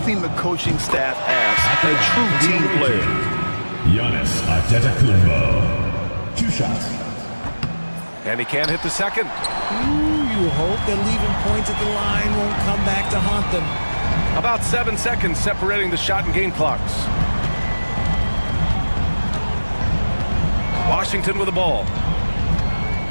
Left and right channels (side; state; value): both; inverted; correlation -1.00